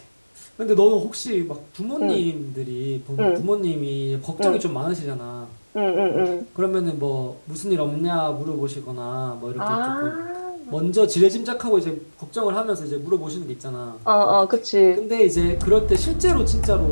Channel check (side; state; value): both; inverted; correlation -1.00